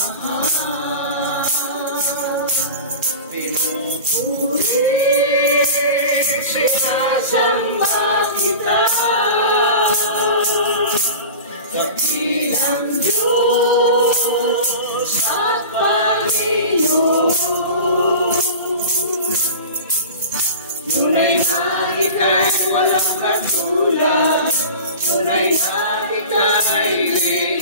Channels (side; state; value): both; inverted; correlation -0.34